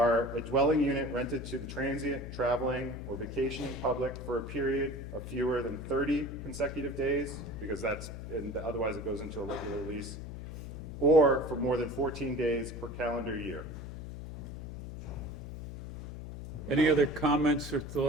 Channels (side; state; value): left; noise; hum, 9 dB below the sound